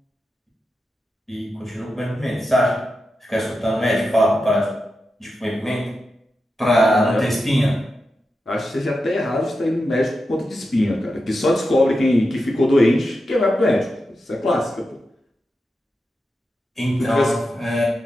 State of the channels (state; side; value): normal; both; correlation 0.89